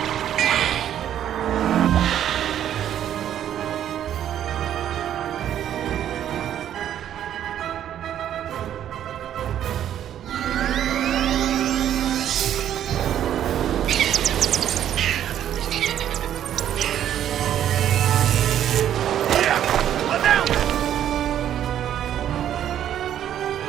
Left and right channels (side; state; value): left; quieter; 10.6 dB